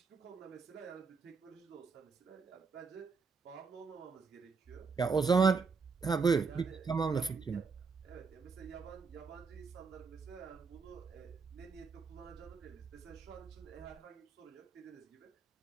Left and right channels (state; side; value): quieter; left; 4.9 dB